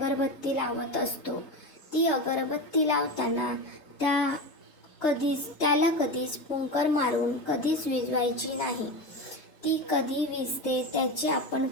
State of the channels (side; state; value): right; late; 3.2 ms